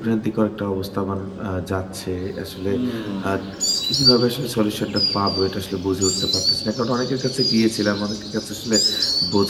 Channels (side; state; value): both; identical; correlation 1.00